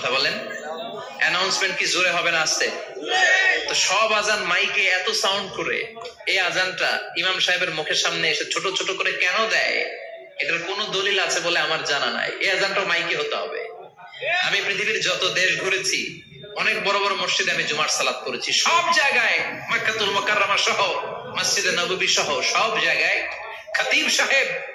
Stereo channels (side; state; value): both; identical; correlation 1.00